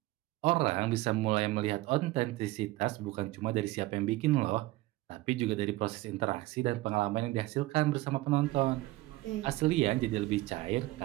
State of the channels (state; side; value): quieter; left; 18.6 dB